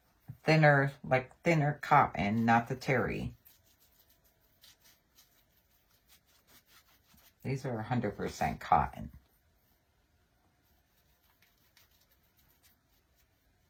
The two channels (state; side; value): identical; both; correlation 1.00